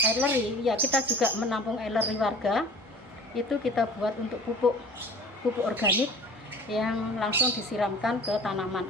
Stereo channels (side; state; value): both; normal; correlation 0.44